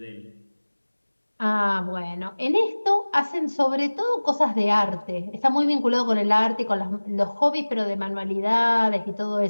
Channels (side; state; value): both; inverted; correlation -1.00